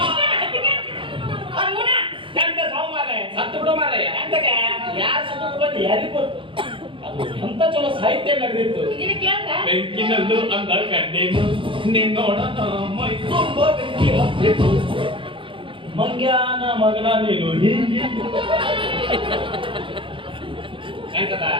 ಅಂತ ಚಲೋ ಸಾಹಿತ್ಯ ನಡೆದಿತ್ತು. ಬೆಂಕಿನಲ್ಲೂ ಅಂದ ಕಂಡೇನು ನಿನ್ನೋಡ ಮೈ ತುಂಬ ಬೆಂಕಿ ಹತ್ತಿತ್ತು ಮಂಗ್ಯಾನ ಮಗನ ನೀನು ಹೀಗೆ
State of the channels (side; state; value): left; late; 0.25 ms